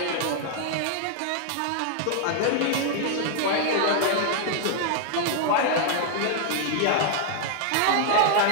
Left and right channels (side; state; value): both; different; correlation -0.01